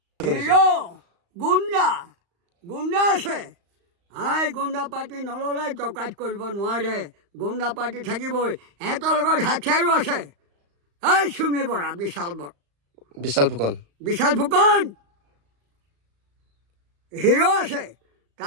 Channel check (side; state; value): left; late; 35 ms